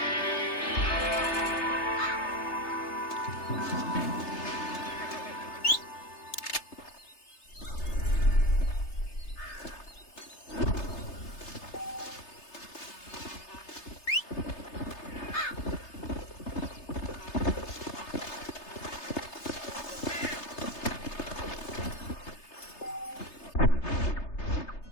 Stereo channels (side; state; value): right; late; 3.3 ms